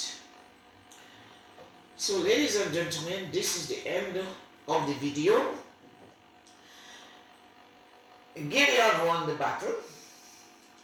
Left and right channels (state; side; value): identical; both; correlation 1.00